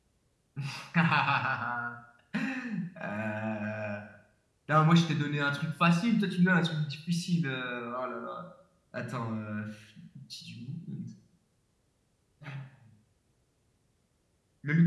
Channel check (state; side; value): identical; both; correlation 1.00